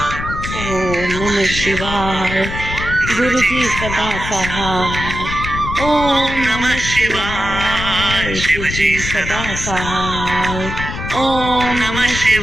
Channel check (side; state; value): left; noise; rumble, 6 dB below the sound